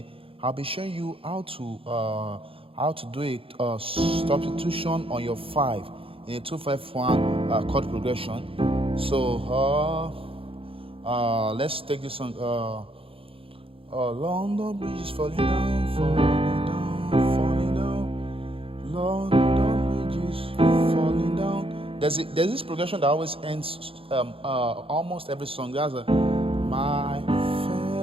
I'll be showing you how to do a substitution on your 5 in a 2-5-1 chord progression. So let's take this on. London Bridge is falling down, falling down, falling down. London Bridge is falling down. There's this progression that always ends almost every song. There's a my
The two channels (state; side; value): late; left; 0.27 ms